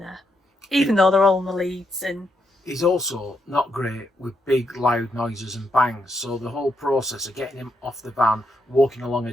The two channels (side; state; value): both; normal; correlation 0.80